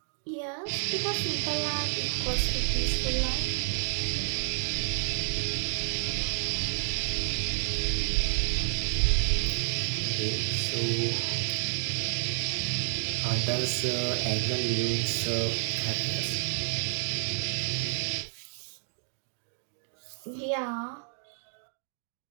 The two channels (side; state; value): left; silent; digital silence